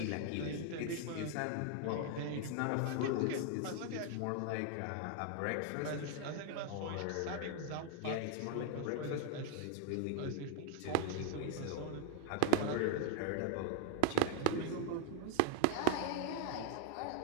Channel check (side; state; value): both; different; correlation 0.00